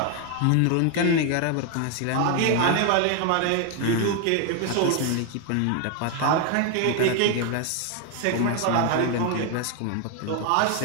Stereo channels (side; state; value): both; different; correlation 0.01